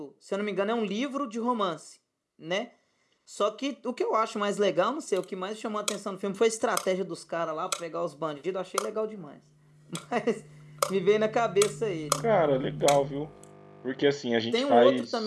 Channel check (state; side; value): identical; both; correlation 1.00